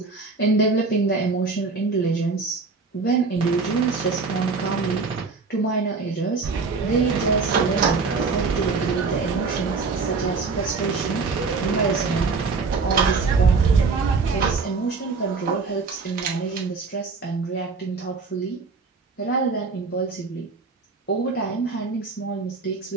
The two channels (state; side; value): quieter; left; 4.4 dB